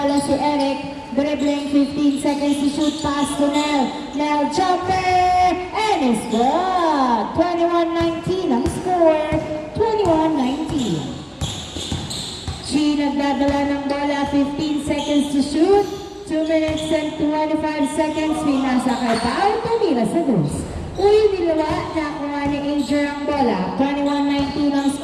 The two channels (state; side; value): identical; both; correlation 1.00